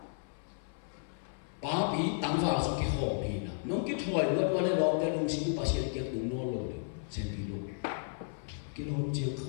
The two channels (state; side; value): silent; right; 55 dB below the other